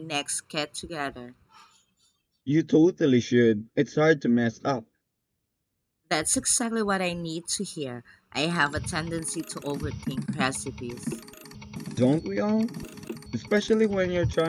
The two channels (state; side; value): identical; both; correlation 1.00